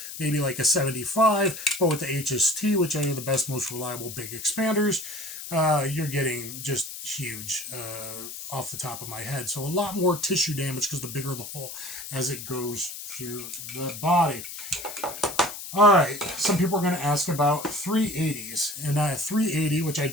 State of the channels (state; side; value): noise; left; hiss, 10 dB below the sound